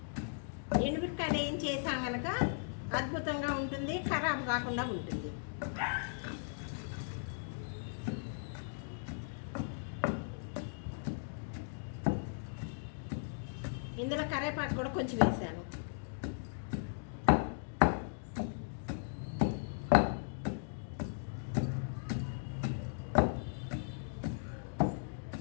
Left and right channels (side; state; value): right; silent; digital silence